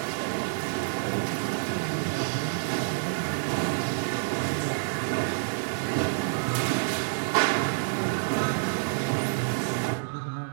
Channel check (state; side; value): silent; left; digital silence